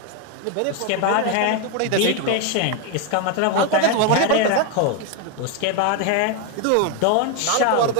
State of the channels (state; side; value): different; both; correlation 0.01